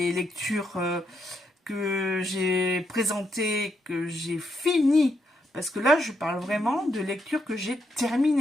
lectures que j'ai présentées, que j'ai finies, parce que là je parle vraiment de lectures que j'ai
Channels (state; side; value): normal; both; correlation 0.78